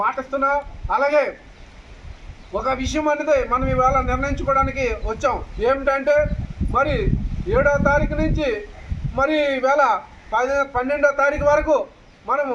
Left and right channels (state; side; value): identical; both; correlation 1.00